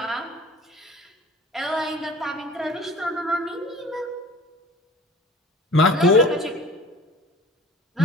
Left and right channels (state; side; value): normal; both; correlation 0.43